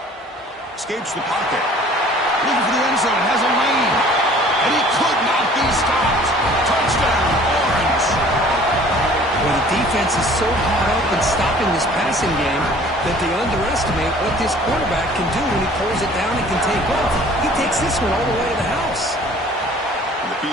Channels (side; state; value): both; normal; correlation 0.51